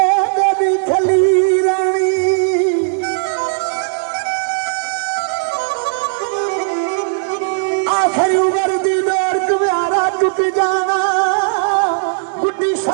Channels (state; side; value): silent; left; 69 dB below the other